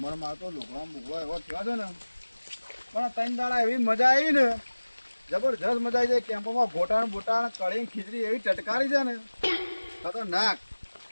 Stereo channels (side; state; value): both; inverted; correlation -1.00